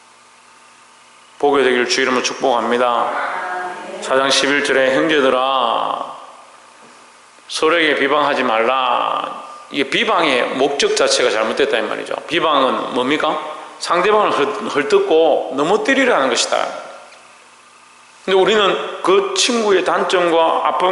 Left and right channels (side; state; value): both; identical; correlation 1.00